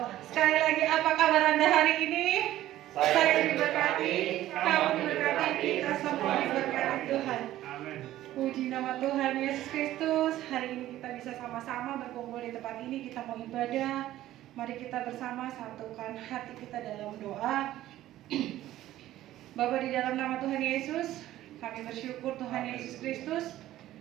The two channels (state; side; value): quieter; left; 14.2 dB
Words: sekali lagi apa kabar Anda hari ini? Saya diberkati, kamu diberkati, kita semua diberkati Tuhan. Puji nama Tuhan Yesus Kristus. Hari ini kita bisa sama-sama berkumpul di tempat ini. Kita mau ibadah. Mari kita bersama satukan hati kita dalam doa. Bapa, di dalam nama Tuhan Yesus, kami bersyukur Tuhan Yesus Kristus,